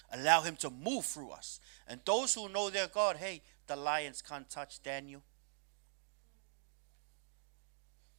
Allow Him to move through us. And those who know their God, hey, the lions can't touch Daniel.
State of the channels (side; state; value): left; silent; digital silence